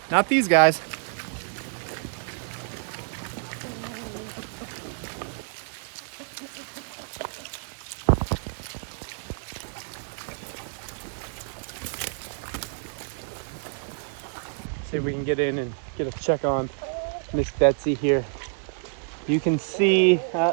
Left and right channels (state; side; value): silent; left; digital silence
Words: not these guys. See if we can get in and get a check on Miss Betsy here. You can see,